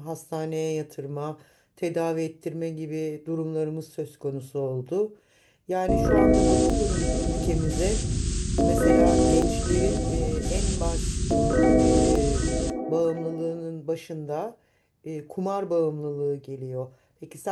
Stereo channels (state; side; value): identical; both; correlation 1.00